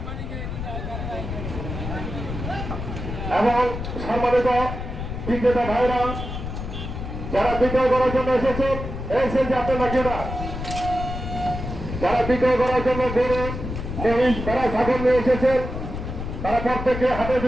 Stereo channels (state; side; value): noise; left; rumble, 6 dB below the sound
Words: এবং সম্মানিত বিক্রেতা ভাইরা যারা বিক্রয় করার জন্য এসেছেন যে আপনার নাকিরা যারা বিক্রয় করার জন্য গরু মহিষ তারা ছাগল নিয়ে এসেছেন, তারা প্রত্যেকে হাটের